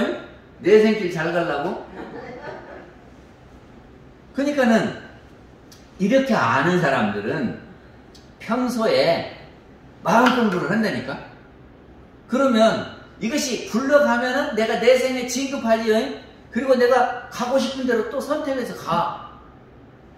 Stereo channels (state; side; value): identical; both; correlation 1.00